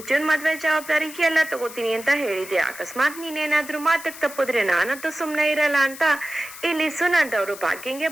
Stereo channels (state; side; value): noise; left; hiss, 14 dB below the sound